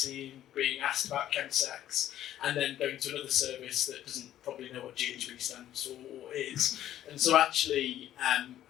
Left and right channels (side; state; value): right; quieter; 12.2 dB